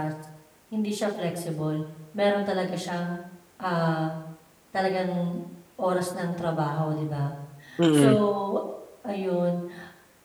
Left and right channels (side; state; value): both; identical; correlation 1.00